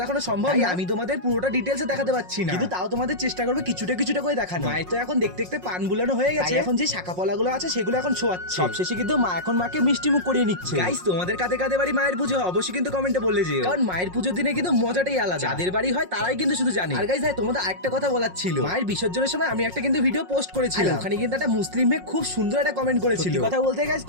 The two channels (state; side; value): late; left; 5.5 ms